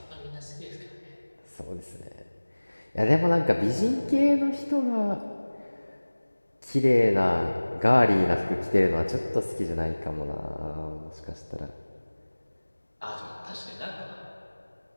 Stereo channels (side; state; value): both; inverted; correlation -1.00